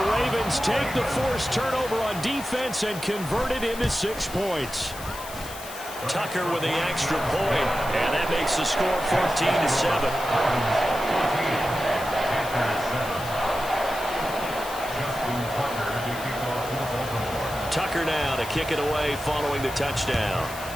Ravens take the forced turnover on defense and convert it into 6 points. Tucker with the extra point, and that makes the score 14-7. Tucker now to kick it away following the touchdown.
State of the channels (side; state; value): left; noise; hiss, 13 dB below the sound